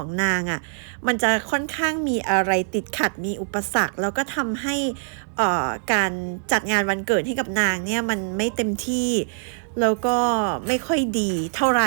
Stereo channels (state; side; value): silent; left; digital silence